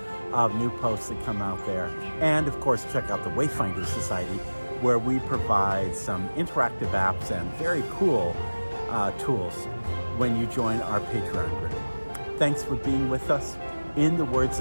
of new posts that come out there. And of course, check out the Wayfinder Society, where we provide some interactive apps and very cool tools when you join our Patreon group. Thanks for being with us. In the words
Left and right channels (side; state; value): both; inverted; correlation -1.00